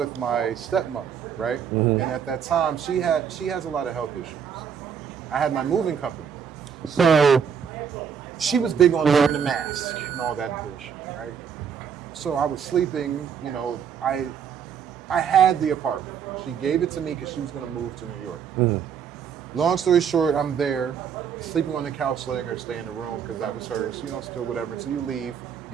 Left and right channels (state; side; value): quieter; left; 7.5 dB